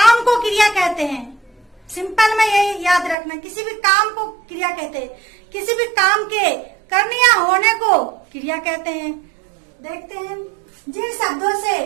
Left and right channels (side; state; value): left; drops out; at 3.2 s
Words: को क्रिया कहते हैं। सिंपल में यही याद रखना, किसी भी काम को क्रिया कहते हैं। किसी भी काम के करने या होने को क्रिया कहते हैं। देखते हैं, जिन शब्दों से